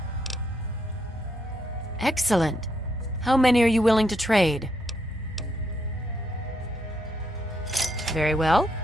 Excellent. How many are you willing to trade? Very well.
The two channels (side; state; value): both; normal; correlation 0.77